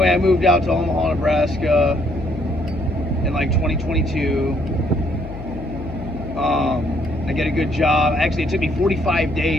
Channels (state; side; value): noise; left; hum, 12 dB below the sound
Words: I moved out to Omaha, Nebraska in like 2022. I get a good job. Actually, it took me 45